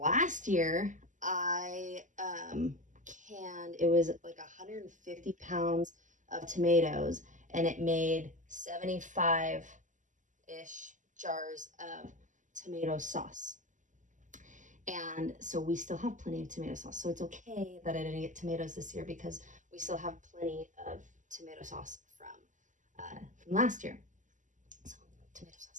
year I canned, it was like 150 pounds of tomatoes, and it made 75-ish jars of tomato sauce. And so we still have plenty of tomato sauce. So it's okay that I didn't get tomatoes this year because we still have plenty of tomato sauce from last year. So tomato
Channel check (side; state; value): left; late; 0.37 ms